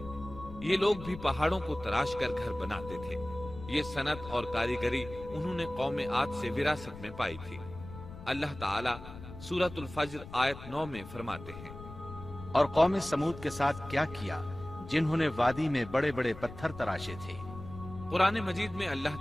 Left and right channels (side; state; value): left; noise; rumble, 14 dB below the sound